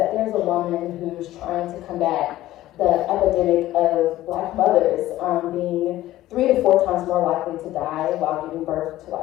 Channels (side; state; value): right; quieter; 15.1 dB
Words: there's a woman who's trying to combat the epidemic of Black mothers being 3 to 4 times more likely to die while giving birth to